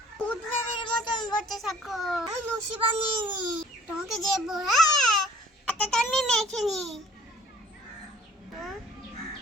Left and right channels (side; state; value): both; normal; correlation 0.55